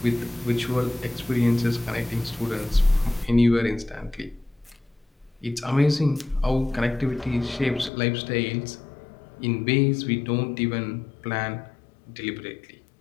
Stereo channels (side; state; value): right; drops out; at 7.9 s